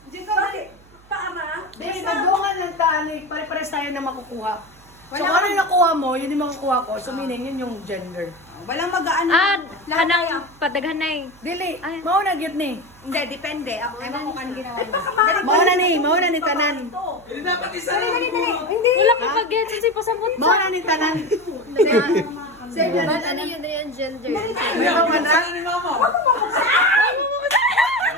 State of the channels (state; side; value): noise; right; hum, 26 dB below the sound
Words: Bakit? Paara? Hindi, magdungan ng talik. Pare-pares tayo na makukuha. So kung ano yung nakuha mo, yun yung makukuha ko. So meaning, yun yung gender. Walang mag-ano. Kanang padaghanay. Dili, Ay. mauna gyud ni. Hindi, depende. Ako ewan ko kanang ginawa niya. Mauna ni tanan. Hindi dapat isa Hindi. Wala ka pag-get kasi pasabot sa. Mauna ni tanan. Save yan. Ano yun na yung gender? Meron ka na? ni mama.